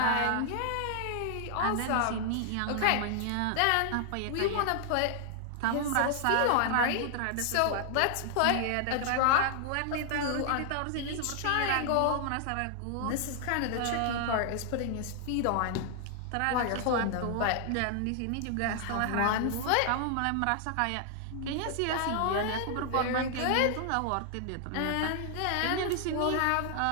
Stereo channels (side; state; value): both; different; correlation 0.00